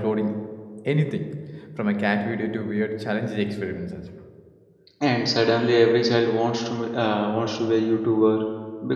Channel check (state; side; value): identical; both; correlation 1.00